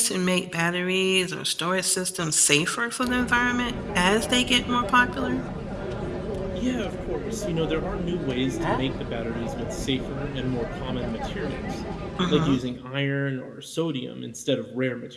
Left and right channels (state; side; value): identical; both; correlation 1.00